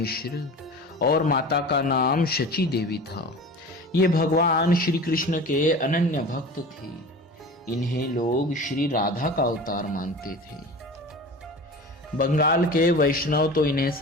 और माता का नाम शची देवी था। ये भगवान श्री कृष्ण के अनन्य भक्त थे। इन्हें लोग श्री राधा का अवतार मानते थे। बंगाल के वैष्णव तो इन्हें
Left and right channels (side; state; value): both; normal; correlation 0.36